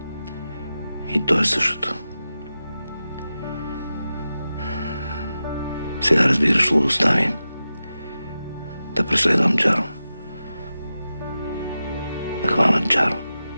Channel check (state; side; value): inverted; both; correlation -0.92